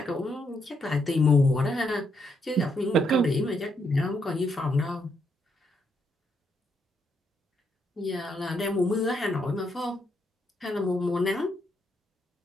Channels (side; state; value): both; normal; correlation 0.76